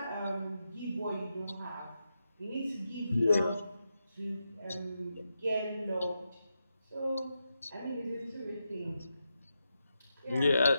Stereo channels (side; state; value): both; inverted; correlation -0.87